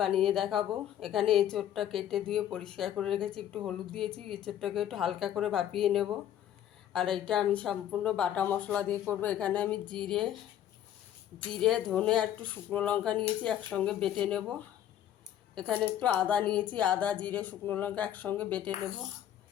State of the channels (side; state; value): right; quieter; 11.0 dB